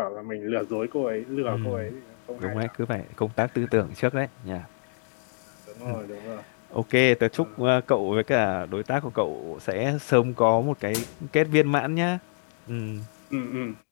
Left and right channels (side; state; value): right; silent; digital silence